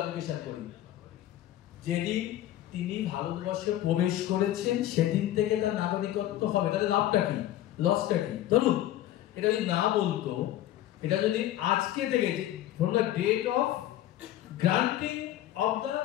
করি। যেদিন তিনি ভারতবর্ষে প্রবেশ করেছেন সেদিন থেকে তার নাগরিকত্ব হবে। তাহলে লাভটা কি, লসটা কি? ধরুন এটা যদি না বলতো, এটা যদি আজকে থেকে from the date of granting of the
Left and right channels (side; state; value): right; quieter; 13.4 dB